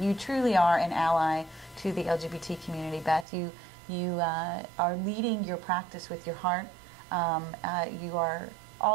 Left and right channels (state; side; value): drops out; left; at 3.2 s